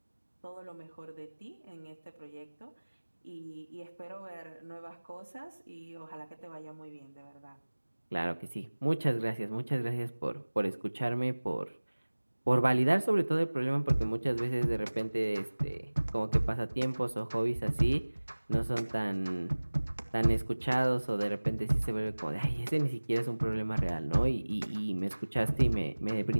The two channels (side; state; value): both; inverted; correlation -1.00